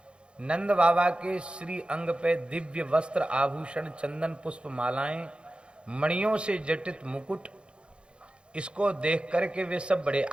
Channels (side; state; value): left; late; 0.056 ms